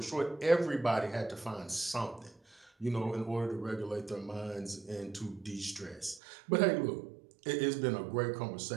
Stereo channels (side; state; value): left; drops out; at 6.2 s